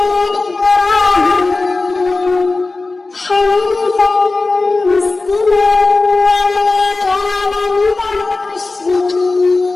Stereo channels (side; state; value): right; quieter; 3.5 dB